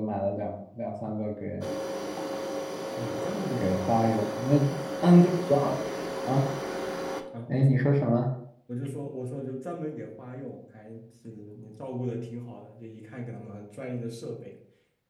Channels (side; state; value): both; identical; correlation 1.00